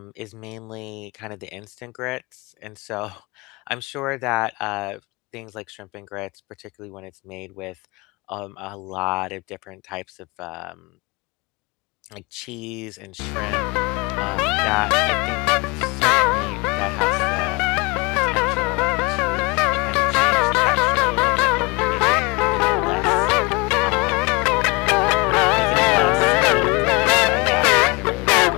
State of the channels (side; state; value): right; quieter; 27.1 dB